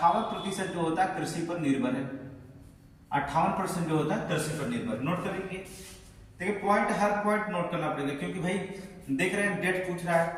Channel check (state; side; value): identical; both; correlation 1.00